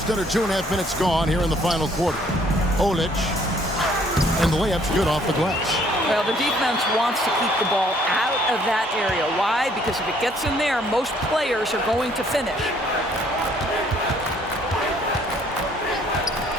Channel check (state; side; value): normal; both; correlation 0.62